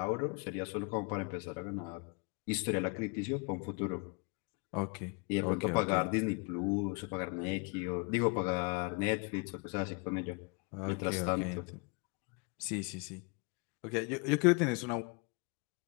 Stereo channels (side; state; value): right; quieter; 32.9 dB